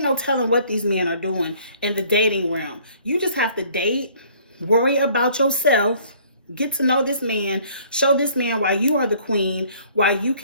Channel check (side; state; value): both; inverted; correlation -0.57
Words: no telling what these men are doing in the dating realm. You just have to date, worry about yourself, get to know this man, show this man why you are the queen, why you